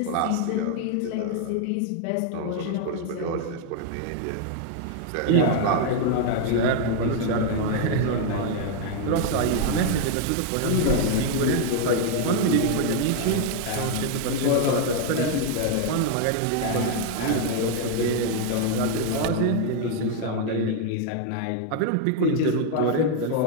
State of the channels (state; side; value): different; both; correlation 0.00